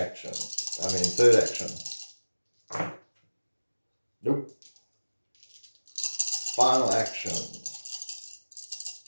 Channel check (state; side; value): inverted; both; correlation -1.00